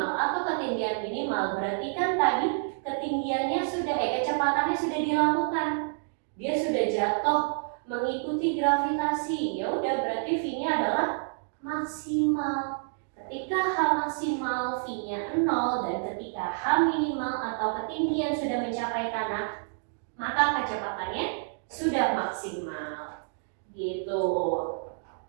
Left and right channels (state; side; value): silent; left; digital silence